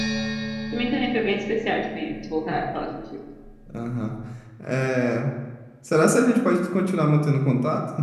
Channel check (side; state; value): both; identical; correlation 1.00